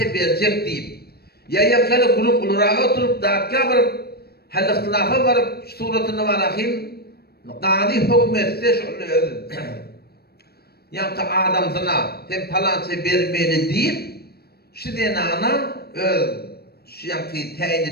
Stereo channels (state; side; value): late; right; 0.46 ms